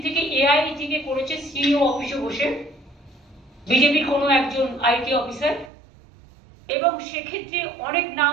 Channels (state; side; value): drops out; left; at 5.7 s